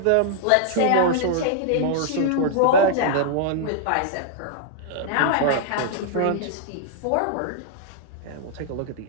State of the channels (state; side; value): different; both; correlation -0.01